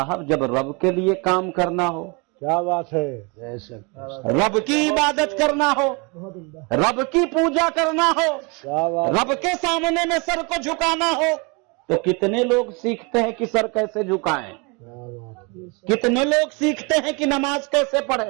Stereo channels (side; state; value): left; quieter; 30.4 dB